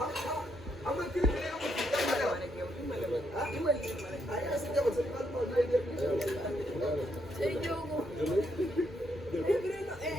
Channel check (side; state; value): both; normal; correlation 0.77